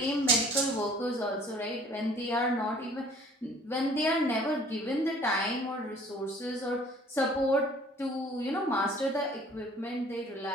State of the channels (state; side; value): normal; both; correlation 0.53